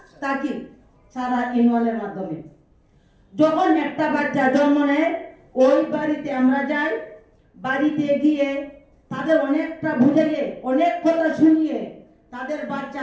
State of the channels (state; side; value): identical; both; correlation 1.00